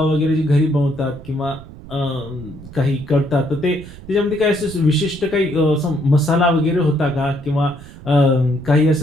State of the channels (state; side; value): noise; right; rumble, 17 dB below the sound